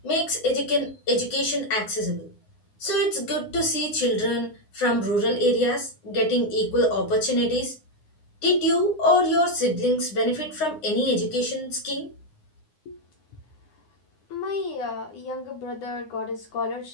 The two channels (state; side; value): late; right; 9.7 ms